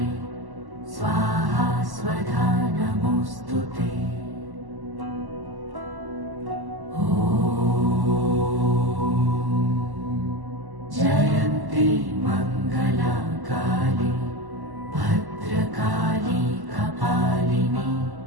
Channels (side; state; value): left; late; 1.1 ms